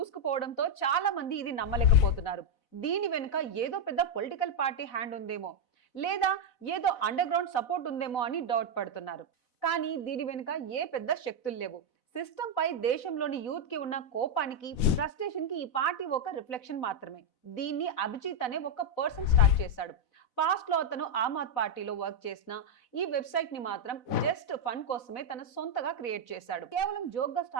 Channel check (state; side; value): late; right; 4.0 ms